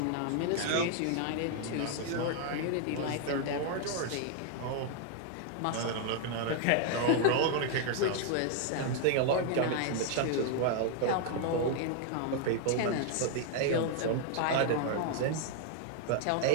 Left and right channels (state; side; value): different; both; correlation 0.00